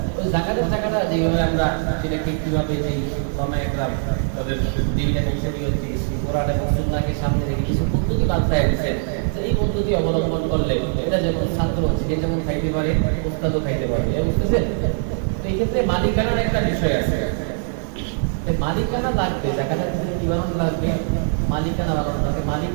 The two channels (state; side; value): silent; left; digital silence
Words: ওই জাকাতের টাকাটা যেভাবে আমরা সেটাকে কিভাবে যে একরাম তাদের দিন এবং শরীয়ত কোরআন এবং সুন্নাহকে সামনে রেখে কিছু পদ্ধতি বাতলায় দিয়েছেন, এই পদ্ধতি অবলম্বন করলে এটা যেমন ছাত্র সে যেমন খাইতে পারে, ওস্তাদও খাইতে পারে, বুঝতেছেন? তো এই ক্ষেত্রে মালিকানার একটা বিষয় আছে। মালিকানা লাগবে, জাকাতের ক্ষেত্রে কি বানানো লাগবে? মালিকানা বানানো লাগবে, মালিক